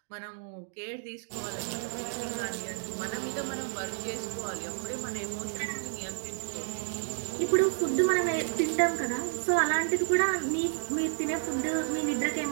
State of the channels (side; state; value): left; silent; digital silence